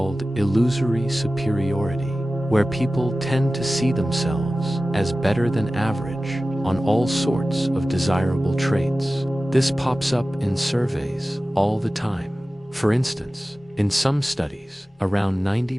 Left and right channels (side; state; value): both; normal; correlation 0.96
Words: illusory superiority, where people tend to see themselves as better than average on all sorts of desirable traits. This pops up in surveys all the time. For instance, in some studies, around